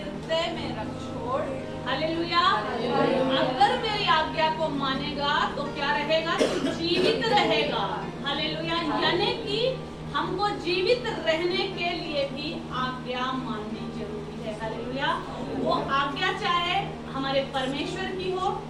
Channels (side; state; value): both; identical; correlation 1.00